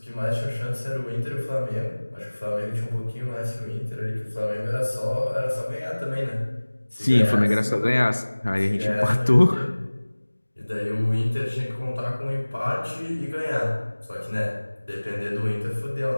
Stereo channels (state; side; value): inverted; both; correlation -1.00